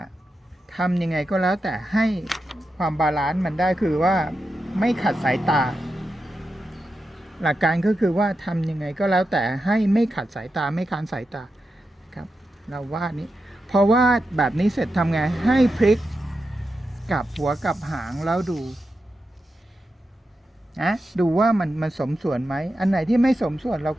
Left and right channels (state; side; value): normal; both; correlation 0.89